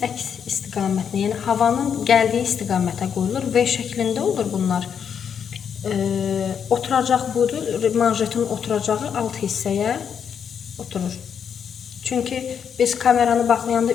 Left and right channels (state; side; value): quieter; right; 7.5 dB